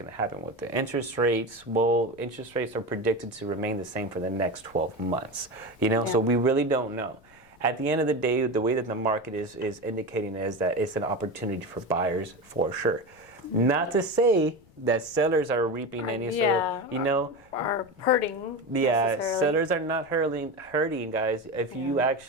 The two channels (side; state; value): left; noise; rumble, 28 dB below the sound